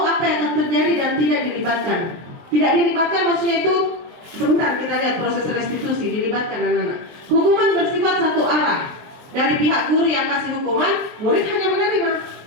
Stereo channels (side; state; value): left; late; 23 ms